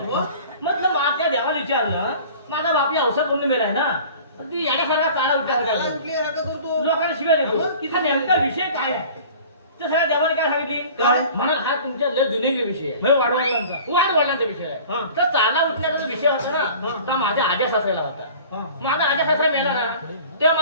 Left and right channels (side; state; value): both; inverted; correlation -0.44